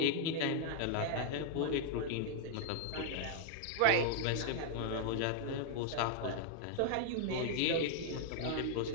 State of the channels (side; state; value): both; different; correlation 0.00